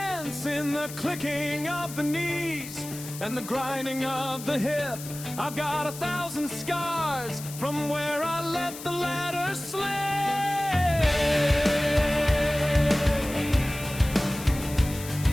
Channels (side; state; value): left; noise; hiss, 12 dB below the sound